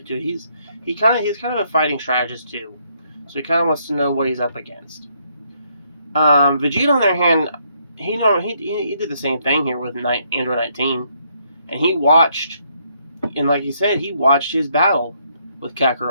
too. He's kind of a fighting strategist too, so he kind of wants to know what he's up against. Vegeta, on the other hand, he did the same thing here with Android 19, and he watched, and like he said, he watched his battle with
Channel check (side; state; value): both; inverted; correlation -0.72